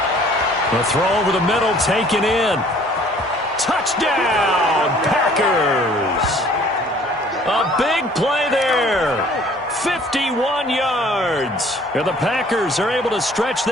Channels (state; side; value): normal; both; correlation 0.55